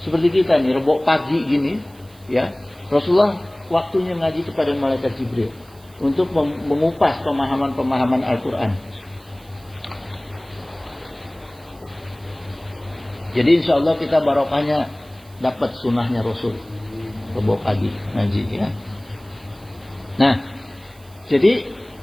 Seperti kita nih, Rebo pagi gini, ya. Rasulullah waktunya ngaji kepada malaikat Jibril untuk mengupas pemahaman-pemahaman Al-Qur'an. Jadi insya Allah kita barokahnya dapat sunnahnya Rasul. Rebo pagi ngaji, ya. Nah, jadi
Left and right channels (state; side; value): noise; right; hiss, 27 dB below the sound